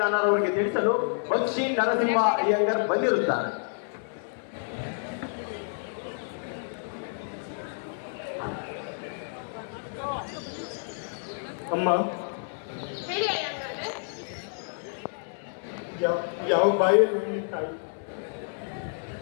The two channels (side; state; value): right; silent; 59 dB below the other